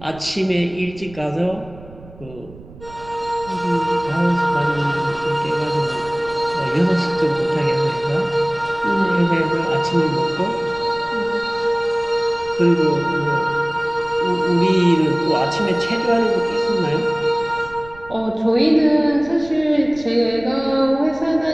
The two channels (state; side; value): noise; right; rumble, 19 dB below the sound